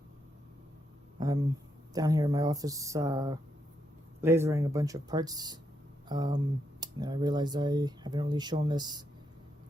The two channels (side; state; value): both; normal; correlation 0.80